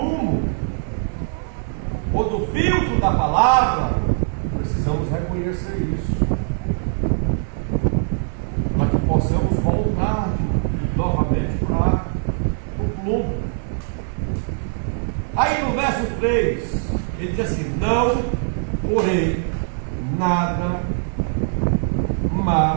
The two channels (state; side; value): silent; left; 61 dB below the other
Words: ou do filtro da palavra, precisamos reconhecer isso. Para que possamos voltar novamente para o plumo. Aí no verso 3, ele diz assim: não porém nada